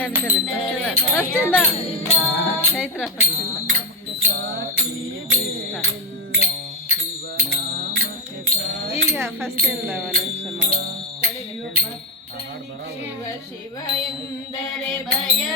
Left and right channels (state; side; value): normal; both; correlation 0.10